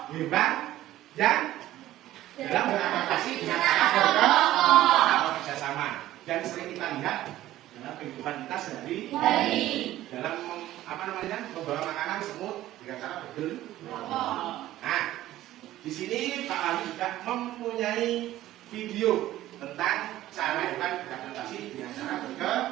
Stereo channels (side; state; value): left; quieter; 14.5 dB